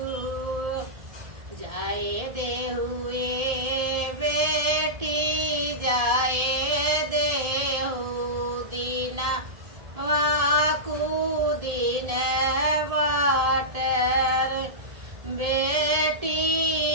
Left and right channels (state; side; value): late; left; 1.7 ms